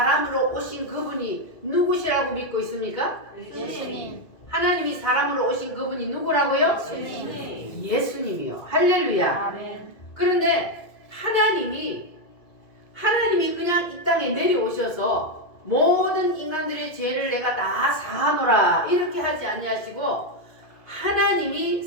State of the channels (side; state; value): right; late; 2.1 ms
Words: 오신 그분이 누구시라고 믿고 있습니까? 예수님. 하나님이 사람으로 오신 그분이 누구라고요? 예수님이요. 할렐루야. 아멘. 그런데 하나님이 그냥 이 땅에 내려오셔서 모든 인간들의 죄를 내가 다 사하노라 이렇게 하지 아니하시고 하나님이